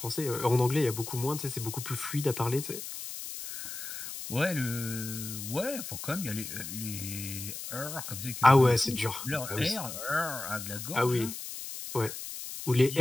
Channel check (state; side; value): noise; left; hiss, 8 dB below the sound